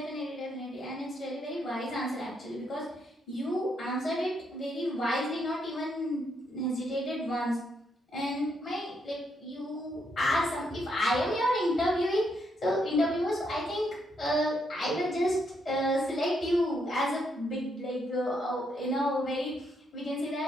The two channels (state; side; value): normal; both; correlation 0.76